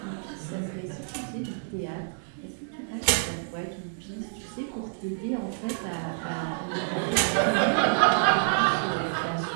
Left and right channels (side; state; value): left; silent; digital silence